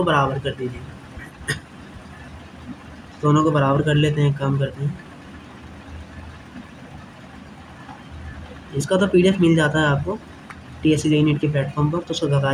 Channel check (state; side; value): identical; both; correlation 1.00